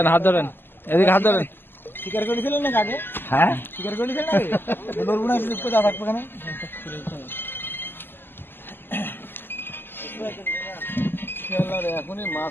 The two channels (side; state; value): right; late; 0.099 ms